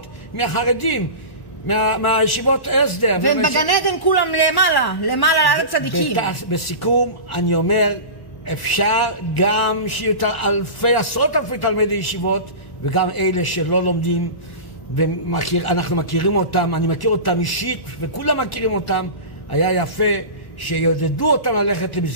מהחרדים, מהישיבות הסדר. והם בגן עדן כולם למעלה לארץ צדיקים. בסיכום אני אומר, אפשר גם שיהיו עשרות אלפי תלמידי ישיבות, וגם אלה שלא לומדים, ואנחנו מכירים אותם, אני מכיר אותם אישית, וכולם מכירים אותם. היה יפה שיעודדו אותם ללכת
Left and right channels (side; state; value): right; late; 1.1 ms